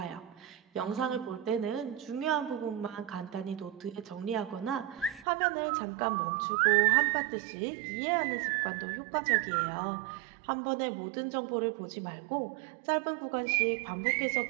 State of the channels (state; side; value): drops out; left; at 5.2 s